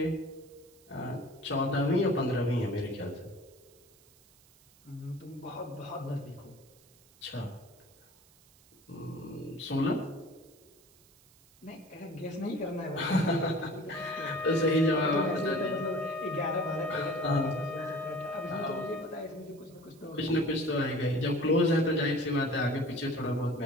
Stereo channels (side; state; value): right; noise; hiss, 28 dB below the sound